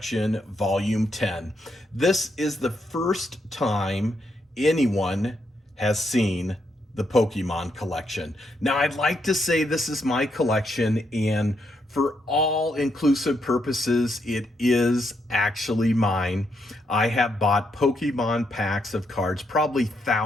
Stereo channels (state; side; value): normal; both; correlation 0.78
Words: Volume 10. This is the first time anyone has seen the Pokemon collection. Now, I'd like to say this is my collection, and for all inclusive purposes, it is actually mine. I have bought Pokemon packs of cards, probably